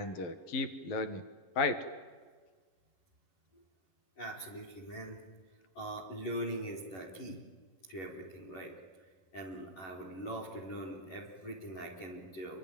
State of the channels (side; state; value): right; late; 11 ms